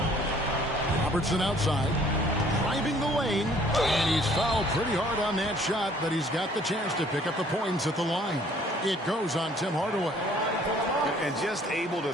Robertson outside, driving the lane, and he's fouled pretty hard on that shot, but he's got the chance to pick up the points at the line. It goes on Tim Hardaway. And just able to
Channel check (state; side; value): normal; both; correlation 0.58